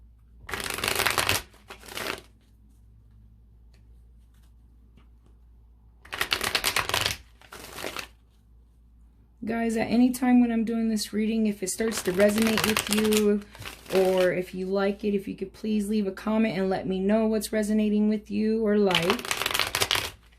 Guys, at any time when I'm doing this reading, if it starts to resonate with you or if you like it, if you could please leave a comment and let me know what's resonating with you or like.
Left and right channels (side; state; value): both; identical; correlation 1.00